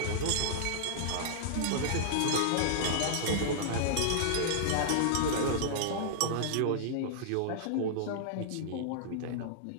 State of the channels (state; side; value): different; both; correlation -0.01